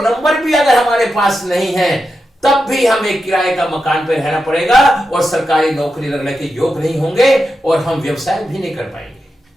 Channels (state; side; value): normal; both; correlation 0.88